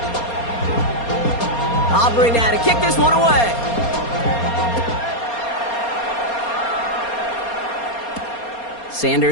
Aubrey now to kick this one away.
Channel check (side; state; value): right; late; 4.3 ms